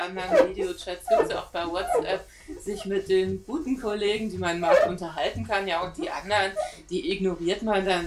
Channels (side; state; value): both; identical; correlation 1.00